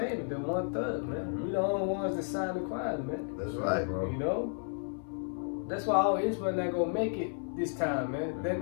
the 1/3, man. We the only ones that signed the choir, man. That's right, bro. You know? That's why all Israel not gonna make it this time, man. They're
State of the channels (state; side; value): silent; right; 56 dB below the other